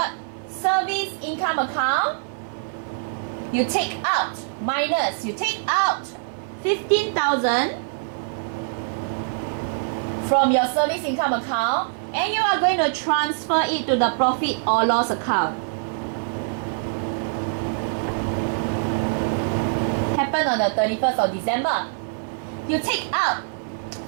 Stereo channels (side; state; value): left; silent; digital silence